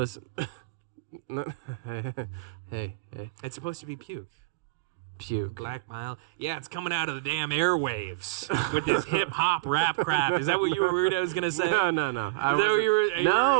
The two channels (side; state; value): left; quieter; 21.7 dB